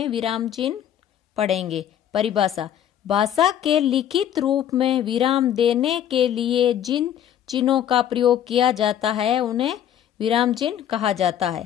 विराम चिन्ह पढ़ेंगे। परिभाषा: भाषा के लिखित रूप में विराम देने के लिए जिन चिन्हों का प्रयोग किया जाता है उन्हें विराम चिन्ह कहा जाता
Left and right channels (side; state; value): right; quieter; 10.2 dB